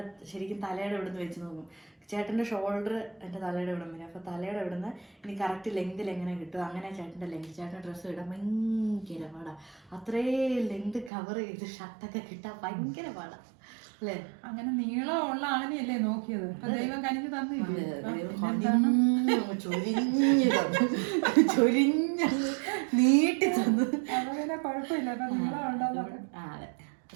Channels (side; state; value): left; drops out; at 11.1 s